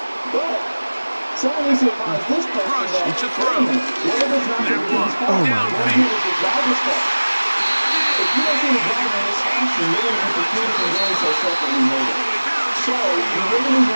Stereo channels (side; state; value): both; inverted; correlation -1.00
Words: But someone needs to advise this person that to throw. That one downfield. If you don't see the driver in this action, you're going to get the field from doing so separately later. So, you really need